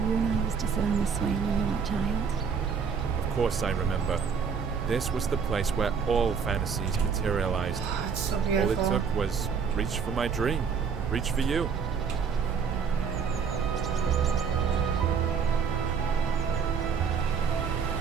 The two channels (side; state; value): left; quieter; 6.2 dB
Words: and I used to sit on the swing when you were a child? Of course I remember. This was the place where all fantasies materialized. Oh, it's so All beautiful. it took was reach for my dream. Reach for you.